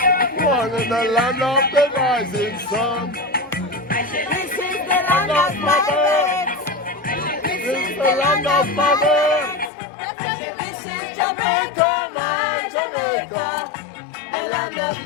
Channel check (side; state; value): right; drops out; at 9.7 s